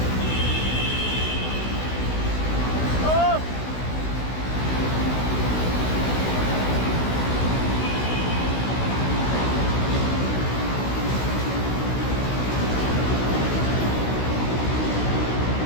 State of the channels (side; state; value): right; late; 16 ms